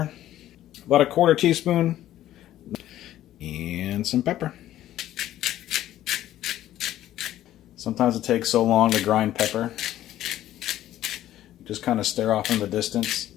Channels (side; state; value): right; quieter; 13.2 dB